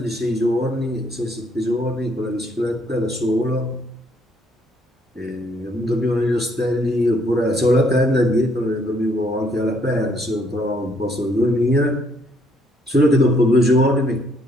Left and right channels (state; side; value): normal; both; correlation 0.68